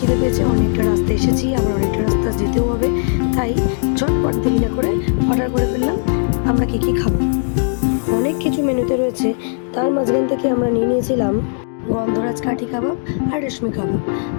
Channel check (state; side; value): silent; right; 57 dB below the other